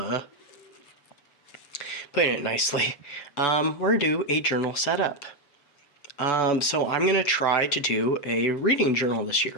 putting it nicely, we're going to do a journal setup. So I'm going to try to do a reading journal this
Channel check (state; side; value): late; right; 7.0 ms